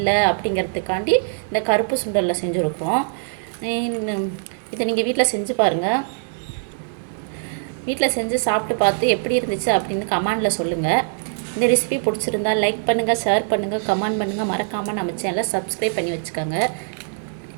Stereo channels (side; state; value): left; silent; digital silence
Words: அப்படிங்கிறதுக்காண்டி இந்த கருப்பு சுண்டலில் செஞ்சுருக்கோம். இதை நீங்கள் வீட்டில் செஞ்சு பாருங்கள். வீட்டில் செஞ்சு சாப்பிட்டு பார்த்து எப்படி இருந்துச்சு அப்படின்னு கமெண்டில் சொல்லுங்கள். இந்த ரெசிபி பிடிச்சிருந்தா லைக் பண்ணுங்கள், ஷேர் பண்ணுங்கள், கமெண்ட் பண்ணுங்கள். மறக்காமல் நம்ம சேனலை சப்ஸ்கிரைப் பண்ணி வச்சுக்கோங்க.